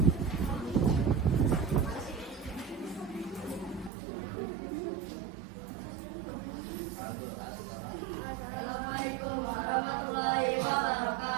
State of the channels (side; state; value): left; drops out; at 3.9 s